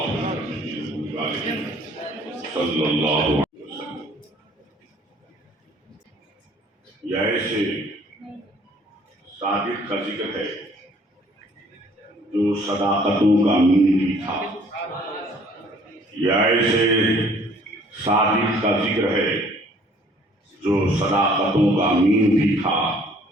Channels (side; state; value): both; normal; correlation 0.58